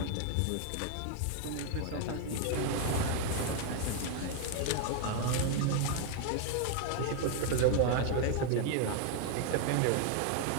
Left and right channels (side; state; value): both; different; correlation 0.00